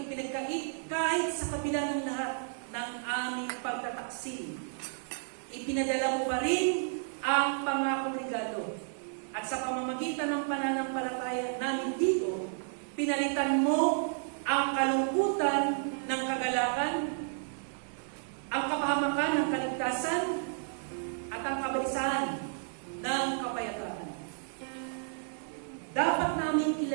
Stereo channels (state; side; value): silent; left; digital silence